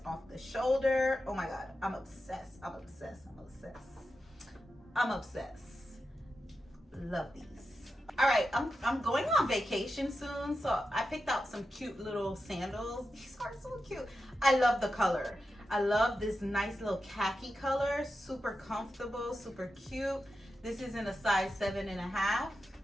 off the shoulder. Oh my God, I'm obsessed. Love these. All right, I'm going on vacation soon, so I picked out some cute little sandals. These are so cute. I love the color. I love this nice little khaki color. Super comfortable, super cute. This is in a size 7.5.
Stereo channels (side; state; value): both; normal; correlation 0.90